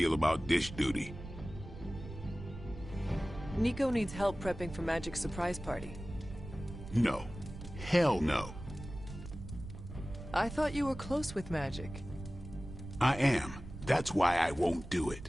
about dish duty. Nico needs help prepping for Magic's surprise party. No. Hell no. I thought you were close with Magic. I am. That's why I won't do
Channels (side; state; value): right; noise; rumble, 12 dB below the sound